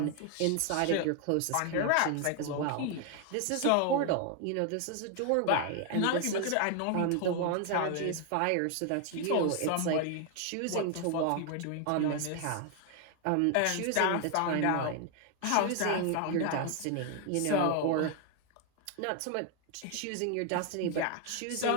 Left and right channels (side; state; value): both; different; correlation 0.00